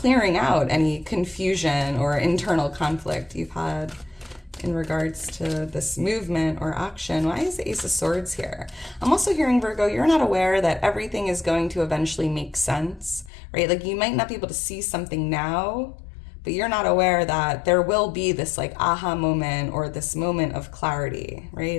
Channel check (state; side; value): drops out; right; at 13.3 s